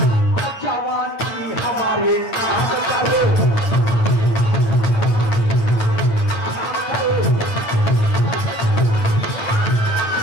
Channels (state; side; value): late; right; 8.9 ms